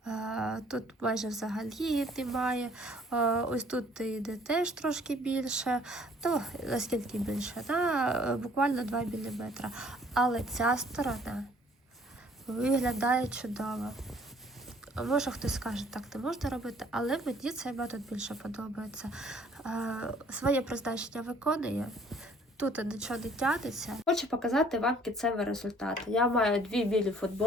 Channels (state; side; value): normal; both; correlation 0.58